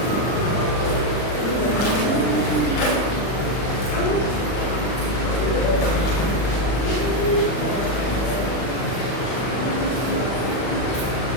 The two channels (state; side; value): late; right; 40 ms